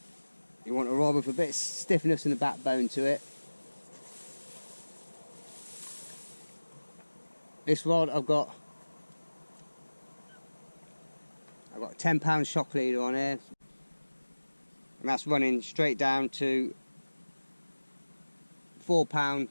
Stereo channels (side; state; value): both; inverted; correlation -1.00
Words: You want a rod with a bit of stiffness and a backbone to it. This rod I've got a £10 shock leader on here, and that's running straight down to £4